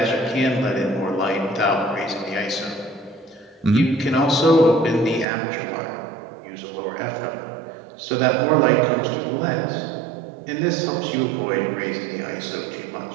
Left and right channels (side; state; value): left; drops out; at 5.2 s